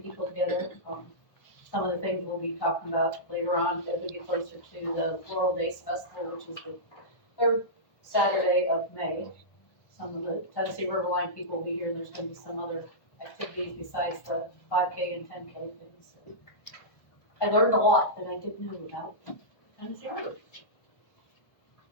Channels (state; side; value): late; right; 1.1 ms